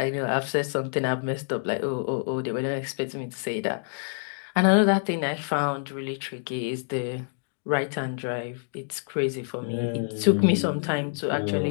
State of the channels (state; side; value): silent; right; digital silence